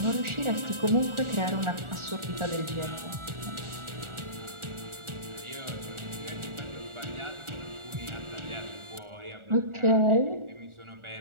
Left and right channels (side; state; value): left; late; 1.4 ms